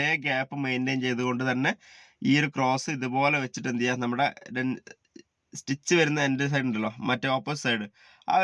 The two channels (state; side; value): identical; both; correlation 1.00